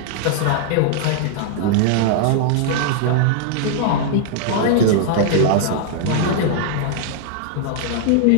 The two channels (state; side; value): different; both; correlation -0.01